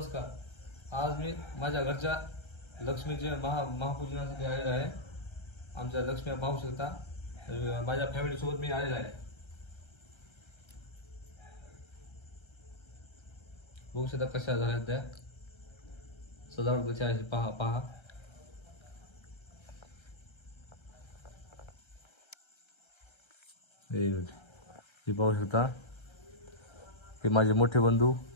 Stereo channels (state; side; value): late; right; 1.3 ms